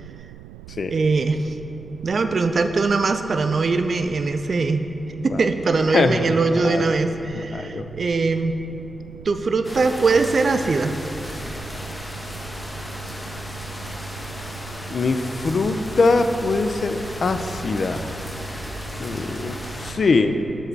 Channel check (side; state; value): right; noise; rumble, 16 dB below the sound